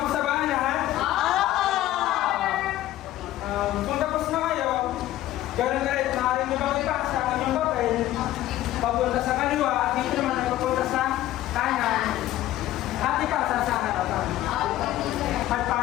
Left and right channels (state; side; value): quieter; right; 14.3 dB